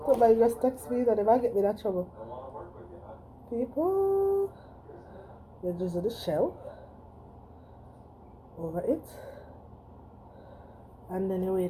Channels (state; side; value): identical; both; correlation 1.00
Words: Somebody just text me that if I get me that trouble. People, you just do the shell over it, and then you